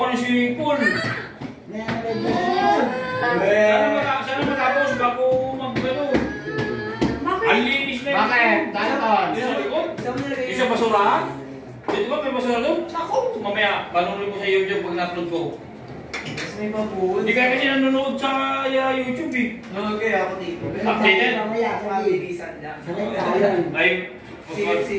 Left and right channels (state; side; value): identical; both; correlation 1.00